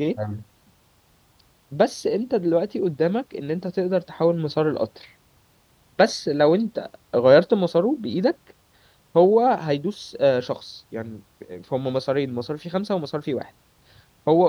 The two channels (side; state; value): both; identical; correlation 1.00